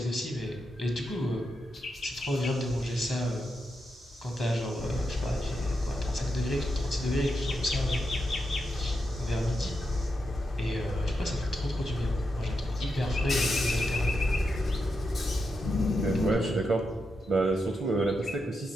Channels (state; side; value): normal; both; correlation 0.85